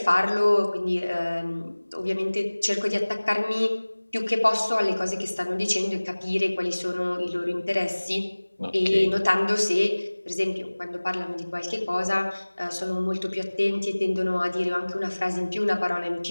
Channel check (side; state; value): both; inverted; correlation -1.00